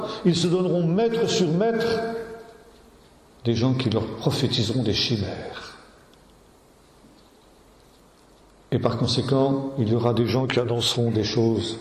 Ils se donneront maître sur maître des gens qui leur prophétiseront des chimères. Et par conséquent, il y aura des gens qui annonceront des choses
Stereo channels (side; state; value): both; identical; correlation 1.00